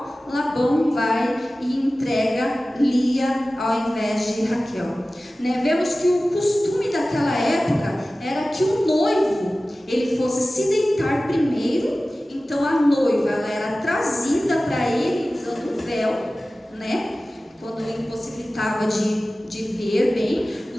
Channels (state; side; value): normal; both; correlation 0.96